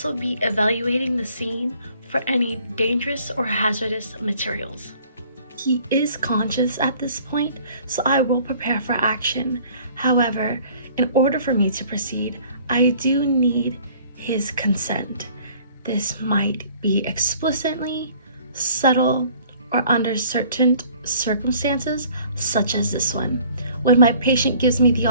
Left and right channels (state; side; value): inverted; both; correlation -0.54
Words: be evaluating the scene for any dangerous or hazardous materials. He is conscious at this point, so I will prepare for action. However, in order for me to proceed, I do need his consent. This might be explicitly, subtle, or under certain circumstances, such as this one. When my patient gives me the